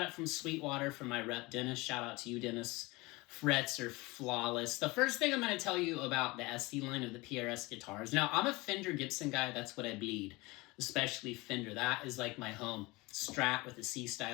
it from Sweetwater from my rep, Dennis. Shout out to you, Dennis. Frets are flawless. The first thing I'm going to tell you about the SE line of the PRS guitars. Now, I'm a Fender Gibson guy. That's what I bleed, especially Fender. That is like my home. Strat with a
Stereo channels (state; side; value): quieter; right; 23.2 dB